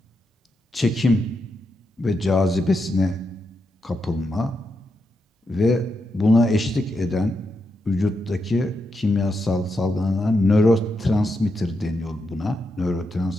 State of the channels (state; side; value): normal; both; correlation 0.84